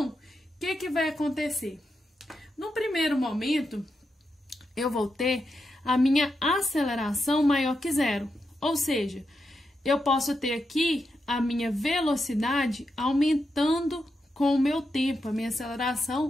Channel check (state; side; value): normal; both; correlation 0.86